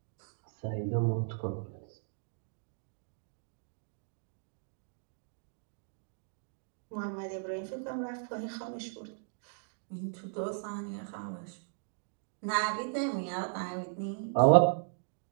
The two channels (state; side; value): silent; left; digital silence